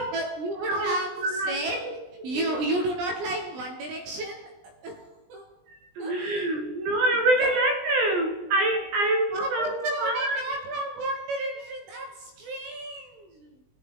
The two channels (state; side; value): late; left; 20 ms